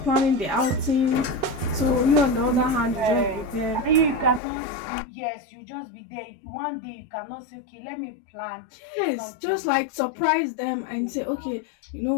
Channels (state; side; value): drops out; right; at 4.4 s